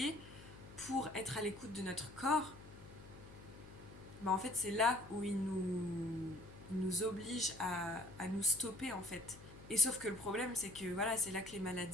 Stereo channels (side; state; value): left; noise; hum, 17 dB below the sound